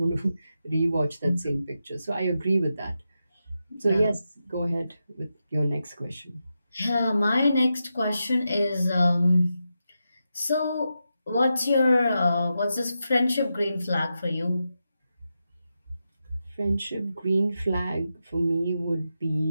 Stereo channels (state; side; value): inverted; both; correlation -0.88